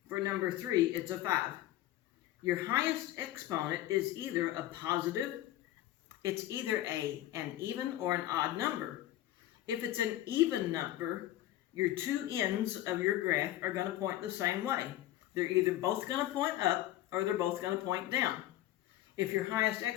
For number 3, it's a 5. Your highest exponent is either a positive, it's either an even or an odd number. If it's an even number, your two ends of your graph are going to point the same way. They're either both going to point up or they're both going to point down. If your highest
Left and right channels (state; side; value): quieter; right; 14.2 dB